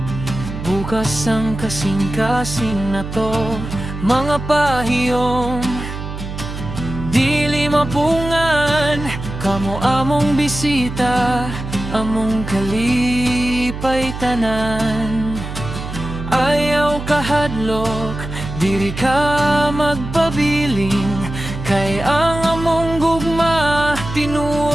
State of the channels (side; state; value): right; noise; hum, 8 dB below the sound